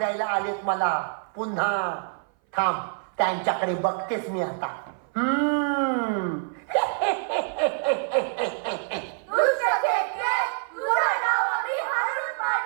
आलेत मला पुन्हा. थांब त्यांच्याकडे बघतेस मी आता.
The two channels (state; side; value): silent; left; 57 dB below the other